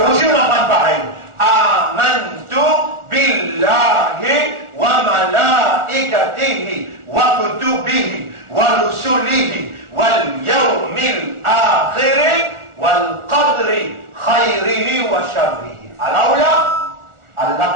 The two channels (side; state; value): left; late; 1.4 ms